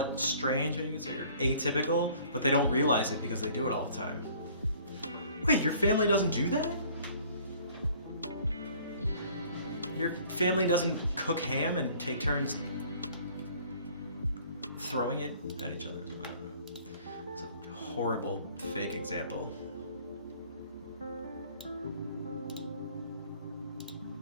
strange, maybe you could say, or atypical, but they don't realize it because they do it all the time. Wait, your family doesn't do that? Your family doesn't cook ham and take turns throwing it at each other? I don't know. It's a horrible fake example.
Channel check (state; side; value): inverted; both; correlation -0.54